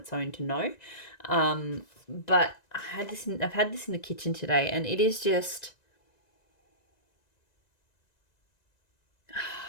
own to know. But I've had this in the kitchen today, and it is just,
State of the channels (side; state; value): right; late; 1.9 ms